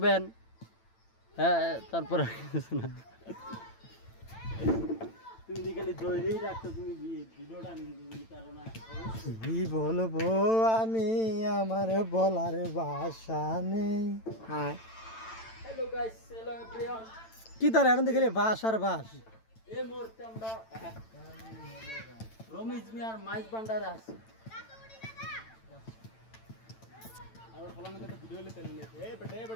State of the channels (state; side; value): late; right; 9.0 ms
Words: হ্যাঁ, তারপরে তুমি খালি ধরেই রাখছো, তুমি ভিডিওটা কি বলবো আমি, আমার বলার ভাষা নেই। Hello guys, hello everyone. কি তার এখন দেখলে বাস আর বাস। এই মুহূর্তে আমরা রমেশ মিয়ার মাইজ ভান্ডারে আছি। আর ফলানে তো ভিডিও লে তেল লে এ